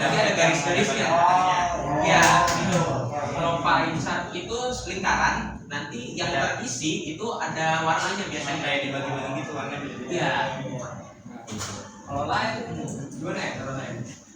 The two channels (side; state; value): both; identical; correlation 1.00